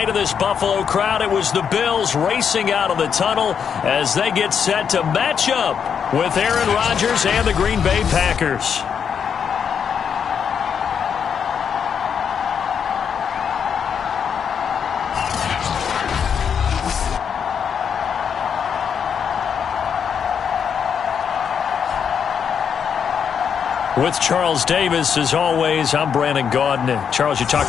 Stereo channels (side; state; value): right; quieter; 7.3 dB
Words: of this Buffalo crowd, it was the Bills racing out of the tunnel as they get set to match up with Aaron Rodgers and the Green Bay Packers. With Charles Davis, as always, I'm Brandon Gaudin. Charles, you